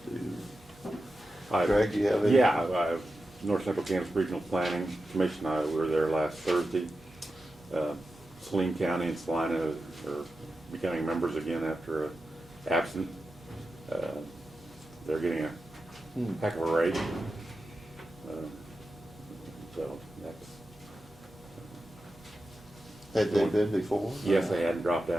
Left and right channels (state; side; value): noise; right; hum, 27 dB below the sound